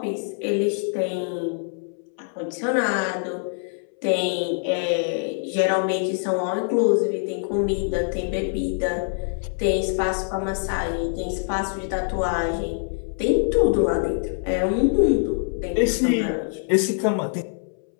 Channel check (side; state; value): right; silent; 62 dB below the other